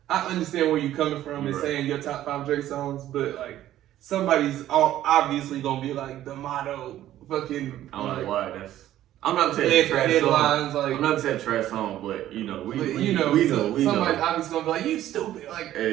I understand where you're coming from and saying your top 5 Drake songs, but like somebody's obviously gonna be like the motto, fucking. I don't know why that's. I'm not saying trash headlines, song. like, I'm not saying trash song, but you know, we know. Somebody's obviously gonna be like, you stupid, like.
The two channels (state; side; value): quieter; left; 13.0 dB